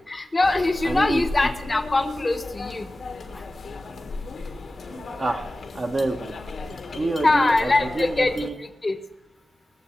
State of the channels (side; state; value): both; normal; correlation 0.95